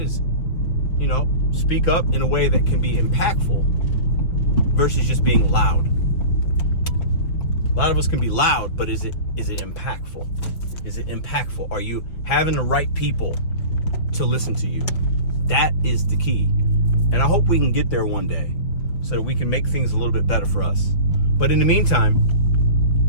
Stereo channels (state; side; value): late; right; 5.8 ms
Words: is, speak up in a way that can be impactful versus just being loud. A lot of us can be loud, but is it impactful? Is it impactful? Are you having the right people to listen to you? That is the key. And I hope we can get there one day so that we can make things a little bit better for us. But in the meantime,